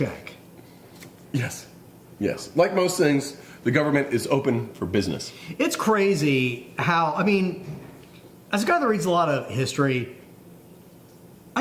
Yes. Like most things, the government is open for business. It's crazy how, I mean, as a guy that reads a lot of history,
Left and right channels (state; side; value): identical; both; correlation 1.00